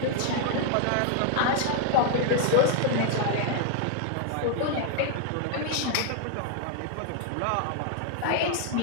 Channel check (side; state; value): both; different; correlation 0.00